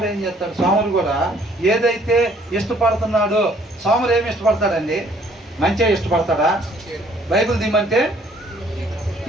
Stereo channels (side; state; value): both; normal; correlation 0.61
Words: ఏం చేస్తాడు? సోమరు కూడా ఏదైతే ఇష్టపడుతున్నాడో, సోమరు ఏమి ఇష్టపడతాడండి? మంచిగా ఇష్టపడతాడా? బైబిల్ దిమ్మంటే